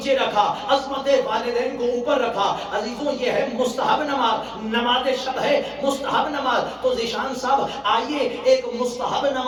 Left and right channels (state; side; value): identical; both; correlation 1.00